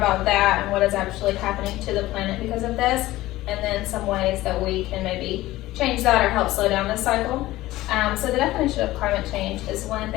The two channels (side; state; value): right; quieter; 16.9 dB